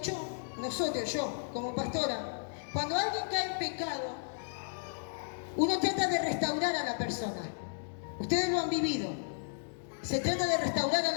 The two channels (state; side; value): silent; right; digital silence